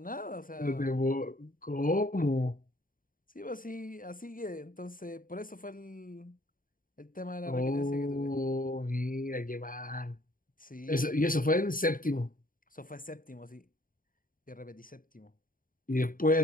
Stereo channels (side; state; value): right; late; 0.40 ms